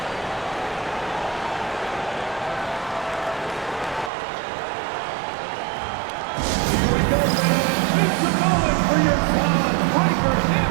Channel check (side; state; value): left; drops out; at 4.1 s